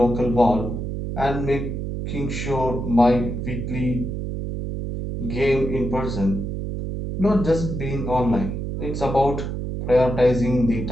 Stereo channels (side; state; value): right; noise; hum, 4 dB below the sound